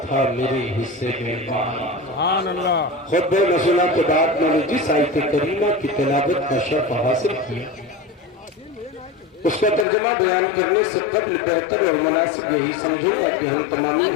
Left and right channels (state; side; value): drops out; right; at 9.9 s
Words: تھا میرے حصے میں مال۔ سبحان اللہ۔ خطبہ نزولہ کے بعد میں نے جس آیت کریمہ کی تلاوت کا شرف حاصل کیا، اس کا ترجمہ بیان کرنے سے قبل بہتر اور مناسب یہی سمجھوں گا کہ ہم تمامی